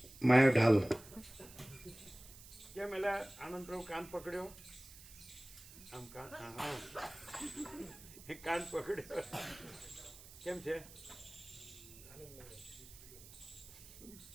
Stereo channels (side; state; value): right; noise; hiss, 17 dB below the sound